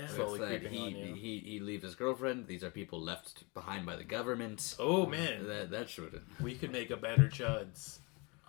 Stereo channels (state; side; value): quieter; right; 29.0 dB